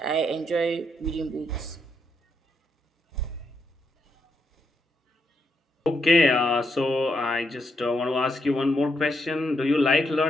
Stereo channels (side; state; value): both; normal; correlation 0.79